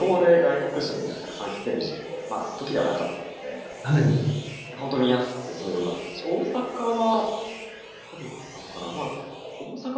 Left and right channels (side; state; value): both; identical; correlation 1.00